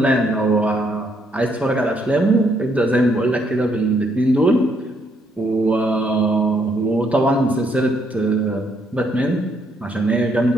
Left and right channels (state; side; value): normal; both; correlation 0.72